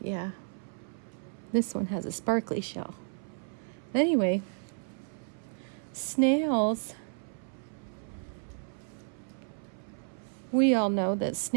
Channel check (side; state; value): left; silent; 56 dB below the other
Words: Yeah. This one has a sparkly shell. Anyway, snails, we all know that